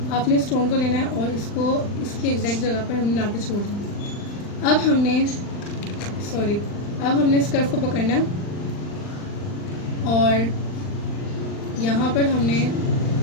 आपने स्टोन को लेना है और इसको इसकी एग्जैक्ट जगह पर हमने ला के छोड़ देना। अब हमने इस कर्व को पकड़ना है और यहाँ पर हमने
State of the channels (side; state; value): right; late; 39 ms